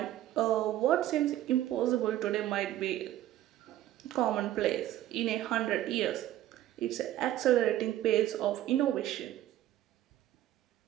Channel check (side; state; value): left; quieter; 13.4 dB